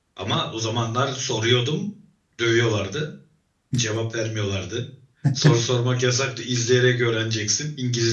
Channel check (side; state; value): both; identical; correlation 1.00